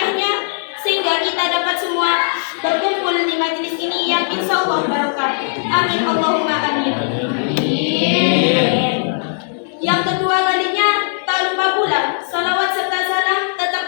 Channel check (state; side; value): silent; right; digital silence